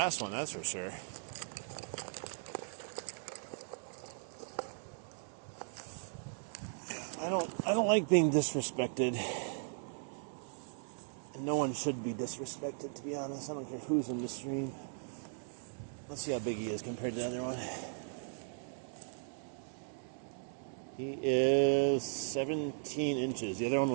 one, that's for sure. I don't like being disrespected. And no one should be disrespected, to be honest. I don't care who's in the stream. Let's see how big he is compared to the other one. He is 17 inches. The other one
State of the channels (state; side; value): silent; left; digital silence